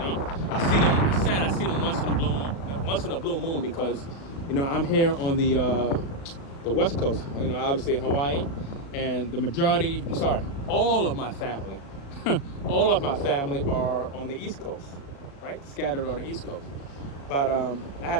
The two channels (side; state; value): right; late; 36 ms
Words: I see them, it's sad, I see them once in a blue moon because, I'm here on the West Coast, obviously in Hawaii, and all of my family, are on the East Coast, right? Scattered on the East Coast. But I had